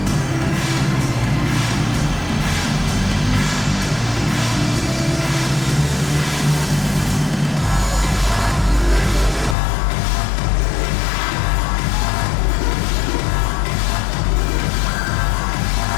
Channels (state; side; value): drops out; right; at 9.6 s